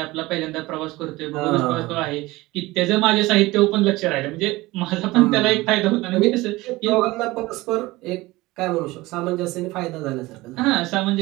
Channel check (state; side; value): quieter; left; 20.0 dB